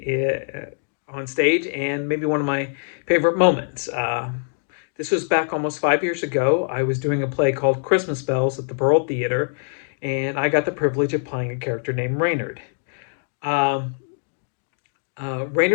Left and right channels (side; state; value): right; silent; digital silence